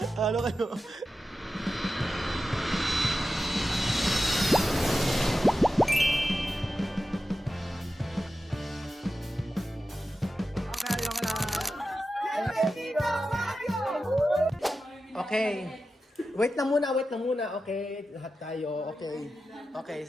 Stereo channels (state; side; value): normal; both; correlation 0.92